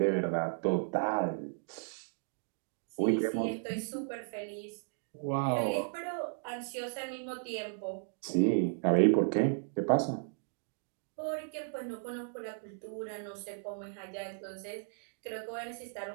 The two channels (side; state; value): left; silent; digital silence